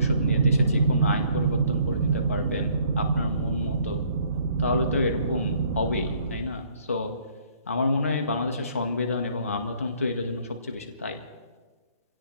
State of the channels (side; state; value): both; inverted; correlation -0.62